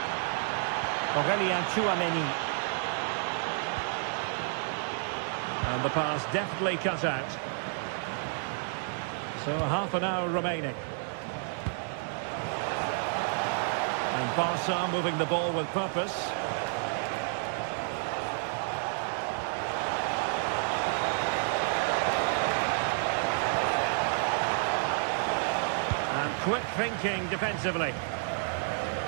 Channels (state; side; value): silent; left; 58 dB below the other